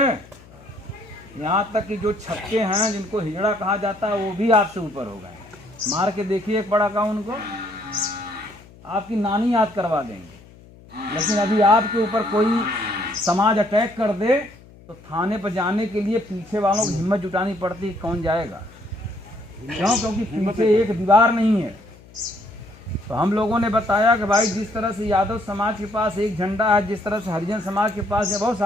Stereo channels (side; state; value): left; noise; hum, 23 dB below the sound